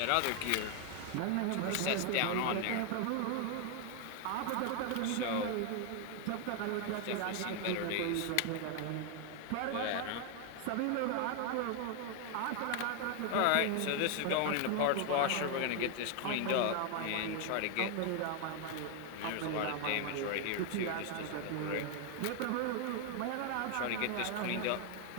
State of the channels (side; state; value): both; different; correlation 0.01